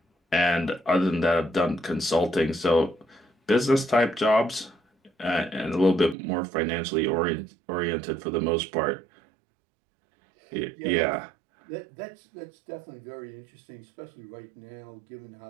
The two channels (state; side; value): drops out; left; at 6.2 s